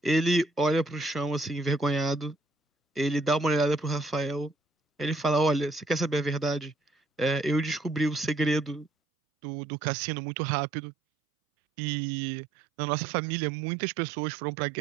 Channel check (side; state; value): left; drops out; at 8.9 s